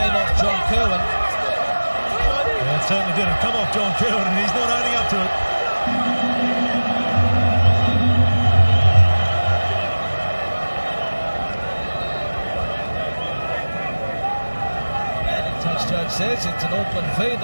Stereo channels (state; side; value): inverted; both; correlation -1.00